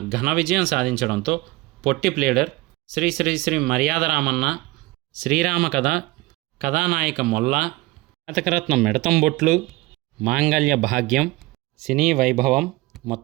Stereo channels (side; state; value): left; quieter; 20.5 dB